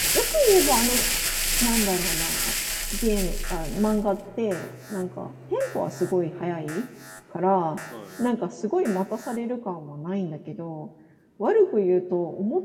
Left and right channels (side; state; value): both; identical; correlation 1.00